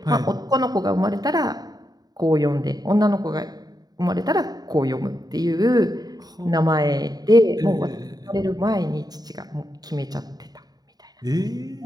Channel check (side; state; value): left; late; 0.19 ms